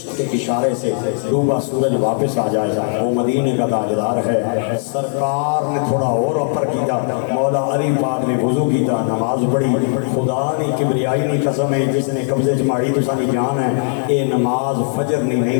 کے اشارے سے ڈوبا سورج واپس آ جائے وہ مدینے کا تاجدار ہے۔ سرکار نے تھوڑا اور اپر کیتا، مولا علی پاک نے وضو کیتا، نماز پڑھی، خدا نے کبریائی نہیں قسم ہے جس نے قبضے چماڑی تو سانی جان ہے، اے نماز فجر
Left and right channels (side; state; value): right; silent; 67 dB below the other